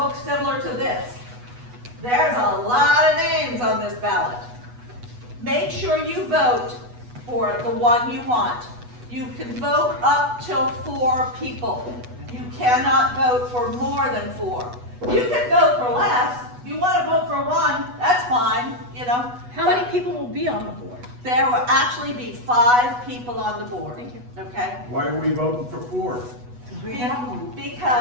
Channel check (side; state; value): left; late; 8.2 ms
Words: similar to this. There's a lot of names on this ballot. Make sure you vote for the one you want. You can vote up till 4 people. You cannot vote for more than 4. You can vote for less. If you want to vote for 1, that's fine, you know. How many people will be on the board? There will actually be 5 people on the board. Thank you. Okay? Why are we voting for 4? We have one.